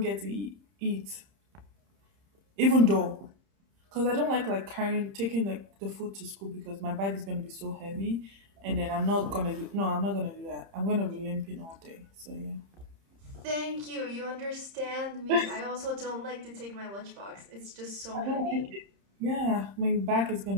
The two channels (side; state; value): left; late; 30 ms